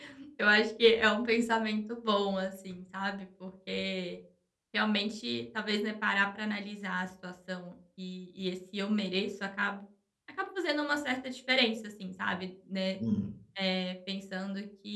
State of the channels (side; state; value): both; identical; correlation 1.00